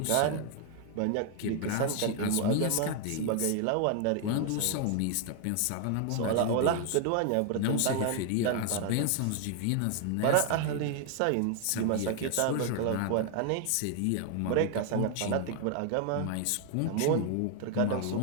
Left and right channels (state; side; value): different; both; correlation 0.00